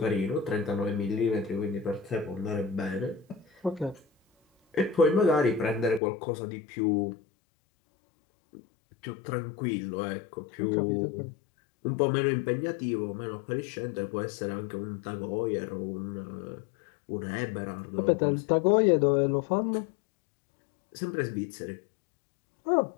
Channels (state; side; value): drops out; right; at 6.0 s